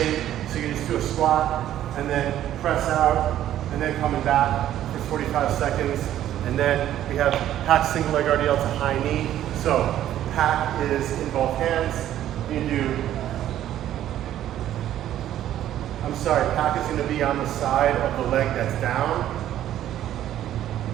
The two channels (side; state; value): left; quieter; 12.0 dB